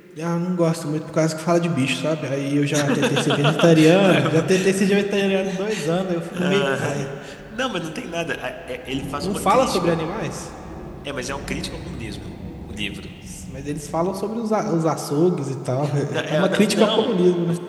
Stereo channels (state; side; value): identical; both; correlation 1.00